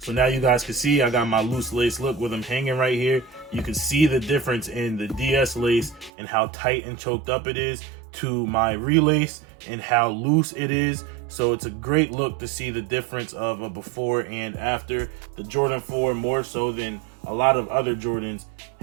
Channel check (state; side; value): drops out; left; at 6.1 s